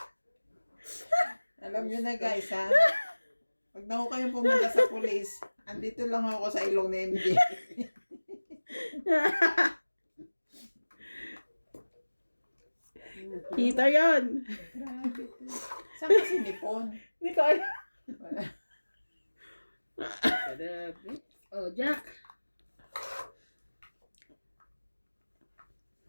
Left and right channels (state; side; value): inverted; both; correlation -1.00